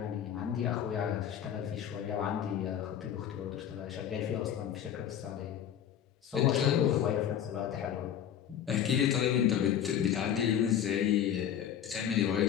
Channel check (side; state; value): right; quieter; 9.7 dB